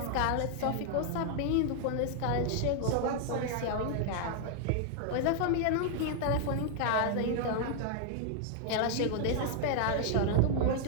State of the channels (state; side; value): different; both; correlation 0.00